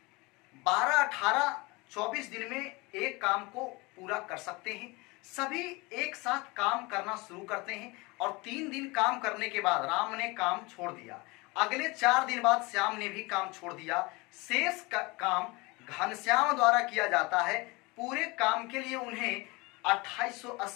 12, 18, 24 दिन में एक काम को पूरा कर सकते हैं। सभी एक साथ काम करना शुरू करते हैं और 3 दिन काम करने के बाद राम ने काम छोड़ दिया। अगले 4 दिन बाद श्याम ने भी काम छोड़ दिया। शेष काम घनश्याम द्वारा किया जाता है। पूरे काम के लिए उन्हें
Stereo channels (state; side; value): quieter; right; 25.0 dB